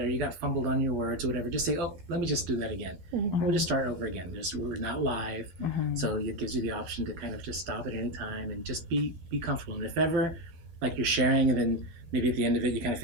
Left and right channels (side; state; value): left; late; 12 ms